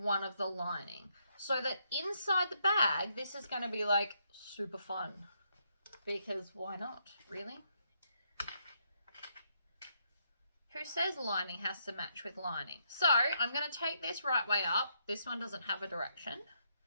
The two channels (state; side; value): inverted; both; correlation -0.76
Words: one of the lining. So that inside the bag, this is going to be like super fun. Because why not, really? Who says lining has to match with lining? So I'm going to take this right way up. This one doesn't have a direction.